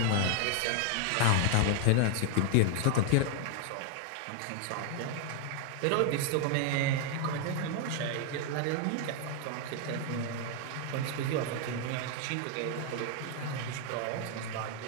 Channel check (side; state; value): both; different; correlation 0.00